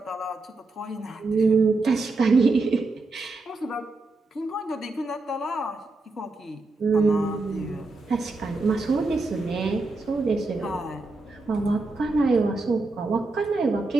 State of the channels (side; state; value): left; quieter; 3.3 dB